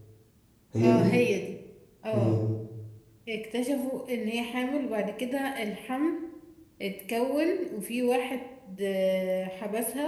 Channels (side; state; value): both; identical; correlation 1.00